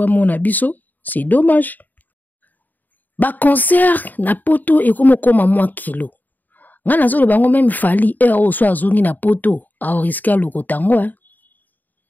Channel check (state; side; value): late; right; 0.086 ms